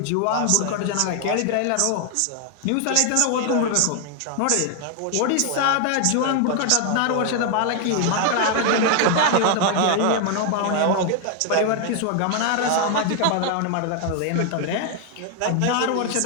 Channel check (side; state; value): both; different; correlation 0.00